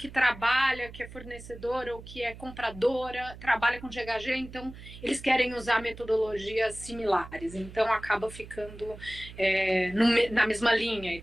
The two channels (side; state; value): right; noise; hum, 15 dB below the sound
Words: trabalha, que é fornecedora ou que é compradora, trabalha com GHG, então eles querem usar metodologias similares, então acaba ficando na mesma linha e